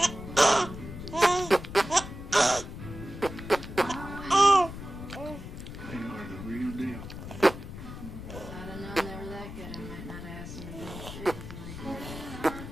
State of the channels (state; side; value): noise; left; rumble, 10 dB below the sound